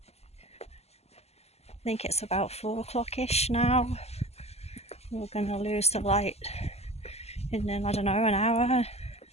I think it's about 4 o'clock-ish now. We're going to lose the light in, I don't know, an hour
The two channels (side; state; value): right; late; 0.30 ms